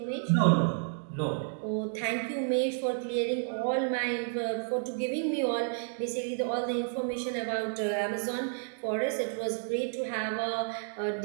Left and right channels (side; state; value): left; silent; digital silence